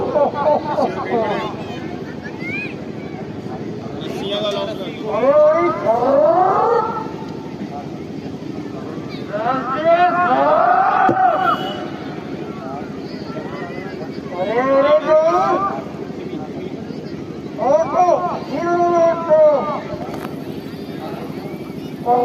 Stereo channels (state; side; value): identical; both; correlation 1.00